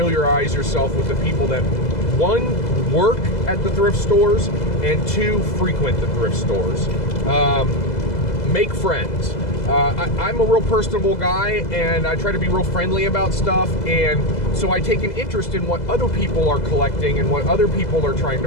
yourself with the people that, 1, work at the thrift stores, and 2, frequent the thrift stores. Make friends. I'm a real personable guy, and I try to be real friendly about stuff, and so I take an interest in what other people are collecting and what other people are trying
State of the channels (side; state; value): right; late; 2.0 ms